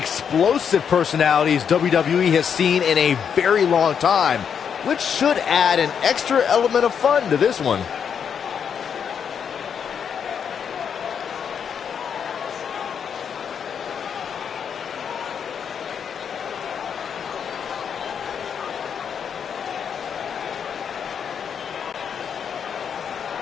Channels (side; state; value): right; quieter; 7.4 dB